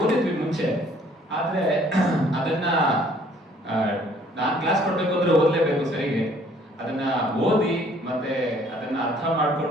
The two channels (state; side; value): normal; both; correlation 0.59